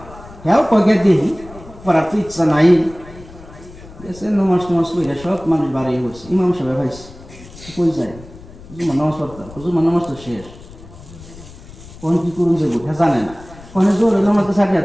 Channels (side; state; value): left; noise; rumble, 18 dB below the sound